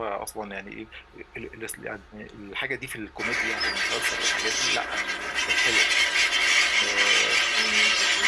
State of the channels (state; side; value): identical; both; correlation 1.00